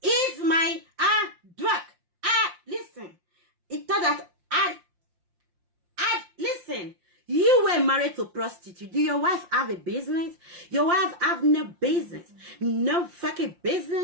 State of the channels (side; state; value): left; late; 5.7 ms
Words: It's my work. Listen. It thought that listen, you were married to a prostitute. Do your wife have a business? Your wife have no business. No fucking